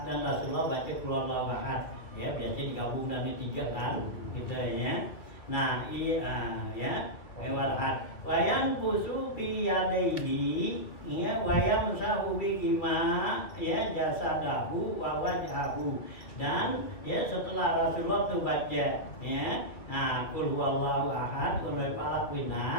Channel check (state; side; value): late; right; 2.6 ms